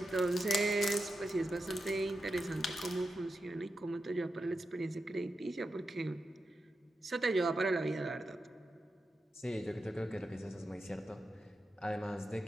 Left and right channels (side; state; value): both; normal; correlation 0.89